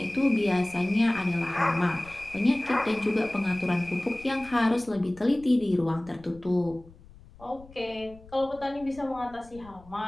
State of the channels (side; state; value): left; noise; rumble, 22 dB below the sound